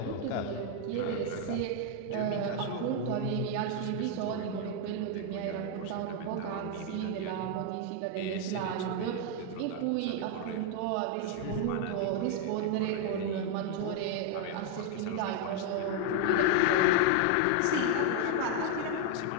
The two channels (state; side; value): different; both; correlation 0.01